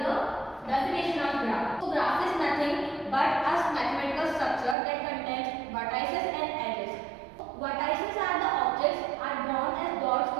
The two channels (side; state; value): left; drops out; at 4.8 s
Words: definition of graph. So, graph is nothing but a mathematical structure that contains vertices and edges. Vertices are the objects are drawn as dots